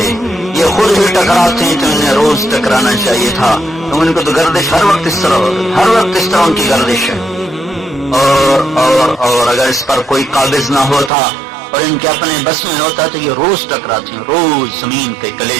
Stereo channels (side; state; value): left; drops out; at 11.1 s